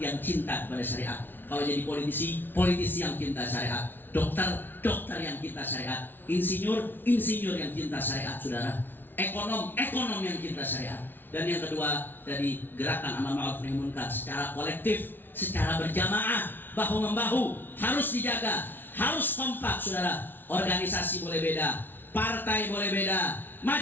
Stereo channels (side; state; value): right; late; 0.096 ms